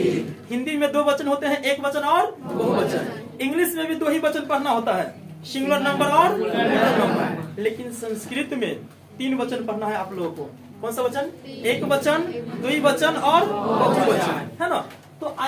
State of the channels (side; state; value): both; identical; correlation 1.00